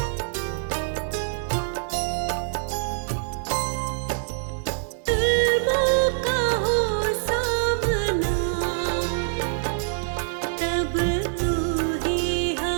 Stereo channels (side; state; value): left; silent; digital silence